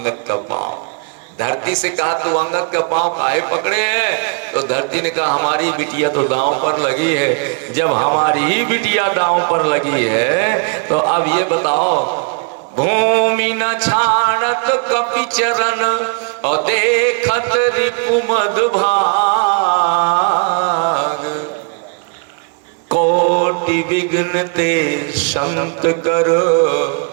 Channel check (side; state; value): left; quieter; 36.7 dB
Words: का पांव। धरती से कहा तू अंगद का पांव काहे पकड़े है? तो धरती ने कहा हमारी बिटिया तो दांव पर लगी है। जब हमारी ही बिटिया दांव पर लगी है तो अब ये बताओ, भूमि न छाड़त कपि चरण और देखत रिपु मधुभाग, कोटि विघ्न ते संत करो,